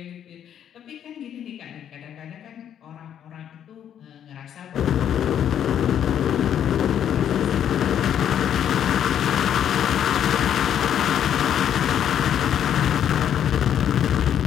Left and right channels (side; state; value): right; quieter; 9.6 dB